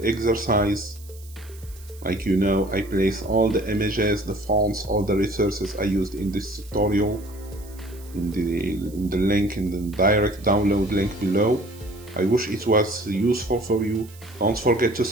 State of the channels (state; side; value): noise; right; hiss, 23 dB below the sound